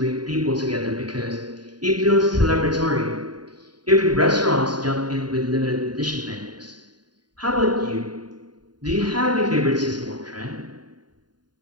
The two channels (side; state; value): left; late; 0.70 ms